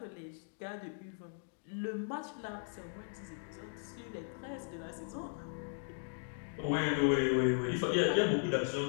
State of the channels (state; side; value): silent; right; digital silence